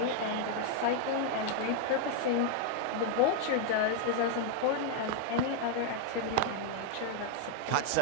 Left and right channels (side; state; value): both; different; correlation 0.00